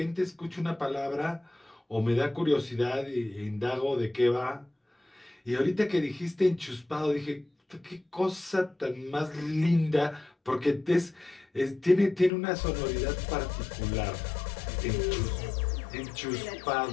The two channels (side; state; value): right; drops out; at 12.3 s